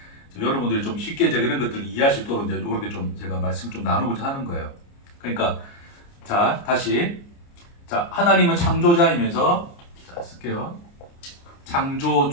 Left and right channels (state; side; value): late; right; 29 ms